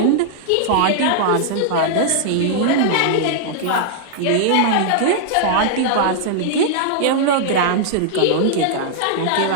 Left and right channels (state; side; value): different; both; correlation -0.01